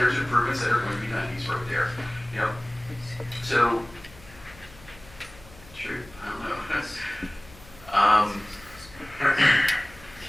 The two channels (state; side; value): noise; left; hum, 22 dB below the sound